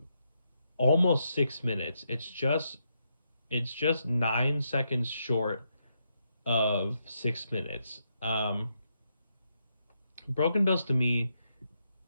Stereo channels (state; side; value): inverted; both; correlation -0.81